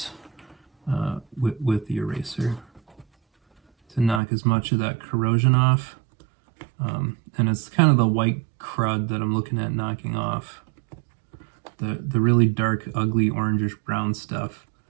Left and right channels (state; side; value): drops out; left; at 4.2 s